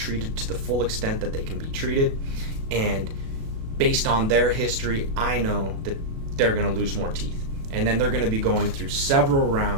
to the full extent that they can be treated, and based on their history, I know that they're going to lose more teeth. And then they're going to be going through several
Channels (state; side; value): late; left; 36 ms